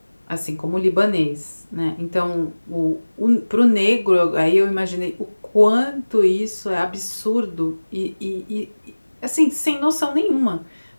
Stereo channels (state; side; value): inverted; both; correlation -1.00